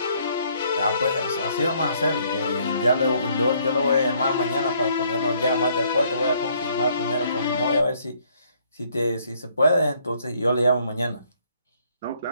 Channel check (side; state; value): both; inverted; correlation -0.66